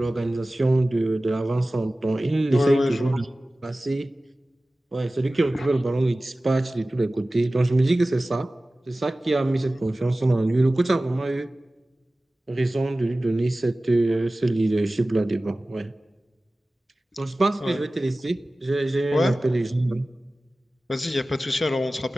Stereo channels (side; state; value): both; normal; correlation 0.97